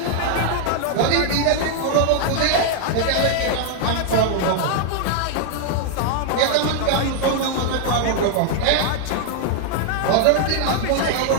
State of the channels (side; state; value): both; different; correlation 0.00